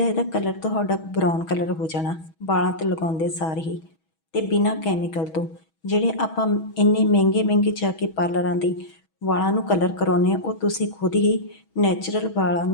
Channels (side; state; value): right; late; 6.2 ms